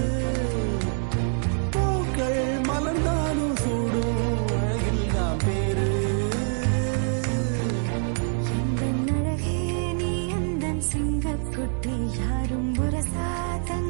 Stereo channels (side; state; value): left; silent; 61 dB below the other